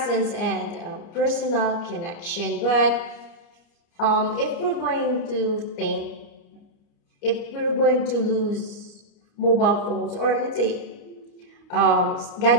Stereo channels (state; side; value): late; right; 29 ms